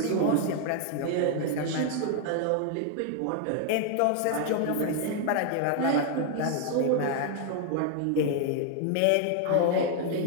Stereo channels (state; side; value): different; both; correlation 0.00